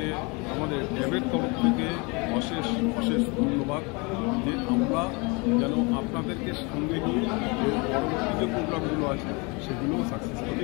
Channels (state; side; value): quieter; right; 29.1 dB